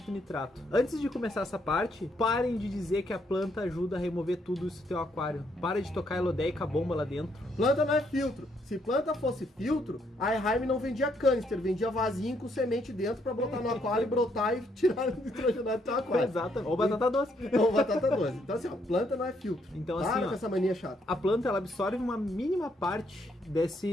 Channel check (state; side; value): normal; both; correlation 0.73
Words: e nitrato. Antes de começar essa parte, parem de dizer que a planta ajuda a remover tudo isso do teu aquário. Para de tocar elodeica bomba lá dentro. Planta não é filtro. Se planta fosse filtro, a Eheim não vendia canister, vendia vasinho com semente dentro para botar no aquário e brotar e tirar o nitrogenado do teu aquário. Exato. Ou batata doce. Ou batata doce. Então assim, planta não é filtro. Então para assim, com essa mania chata. A planta ela absorve uma mínima parte